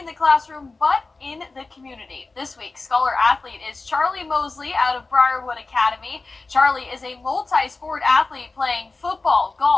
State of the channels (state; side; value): quieter; right; 3.6 dB